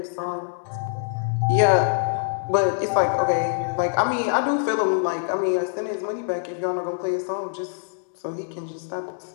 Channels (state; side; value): silent; right; 62 dB below the other